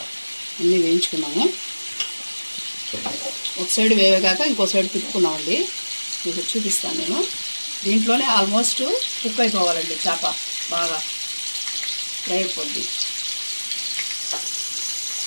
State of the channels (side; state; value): both; inverted; correlation -1.00